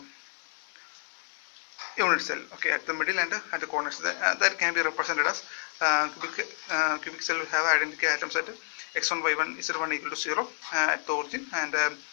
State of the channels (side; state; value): right; silent; 58 dB below the other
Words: unit cell. Okay, at the middle and at the corners, that can be represented as cubic cell will have identical atoms at x1, y1, z1 equal to 0 at the origin, and